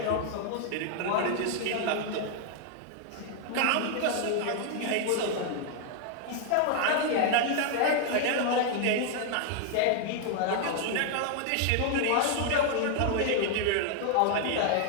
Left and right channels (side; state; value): both; different; correlation 0.00